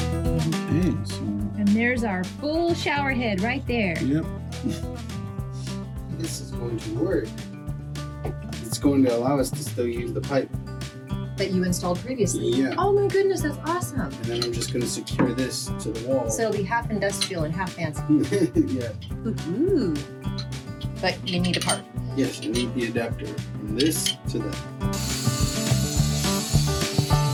Okay, so. And there's our full shower head right there. Yep. This is going to work. It's going to allow us to still use the pipe. That you installed previously? Yeah. Oh my goodness, that's awesome. And then I'm just going to secure this to the wall. So it'll be half industrial and half fancy. Yeah. Ooh. But you need a part. Yes, I need the adapter from this to that.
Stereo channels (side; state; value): both; identical; correlation 1.00